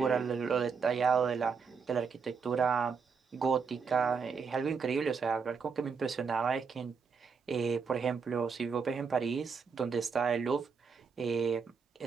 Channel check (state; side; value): quieter; left; 5.6 dB